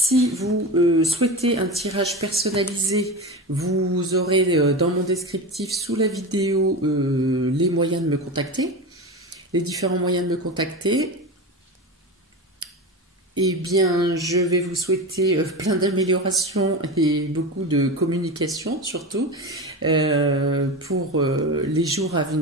vous souhaitez un tirage personnalisé, vous aurez dans mon descriptif sous la vidéo les moyens de me contacter, les différents moyens de me contacter. Eh bien, je vais vous souhaiter plein d'améliorations et beaucoup de communication, surtout, pour les jours à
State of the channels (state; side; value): normal; both; correlation 0.24